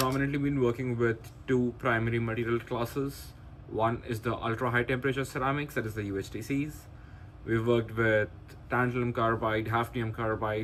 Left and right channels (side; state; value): both; identical; correlation 1.00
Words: been working with two primary material classes. One is the ultra high temperature ceramics, that is the UHTCs. We've worked with tantalum carbide, hafnium